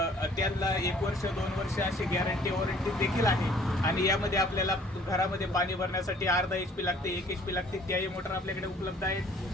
त्यांना 1 वर्ष 2 वर्ष अशी गॅरंटी वॉरंटी देखील आहे। आणि यामध्ये आपल्याला घरामध्ये पाणी भरण्यासाठी अर्धा HP लागते, 1 HP लागते, त्याही मोटर आपल्याकडे उपलब्ध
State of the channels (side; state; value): both; normal; correlation 0.56